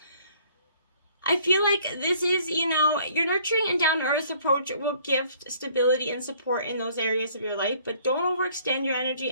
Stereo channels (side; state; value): both; inverted; correlation -0.59